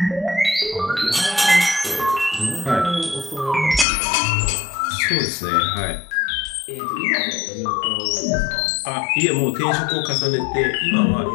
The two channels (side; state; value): right; drops out; at 3.9 s